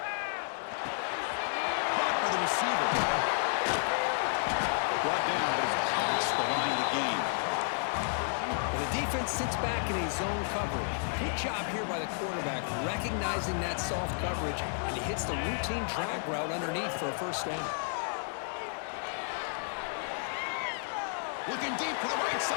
Caught by the receiver. drops back in a zone coverage. Good job here by the quarterback, recognizing that soft coverage, and he hits the routine drag route underneath for a first down. Looking deep to the right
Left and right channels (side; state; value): right; silent; digital silence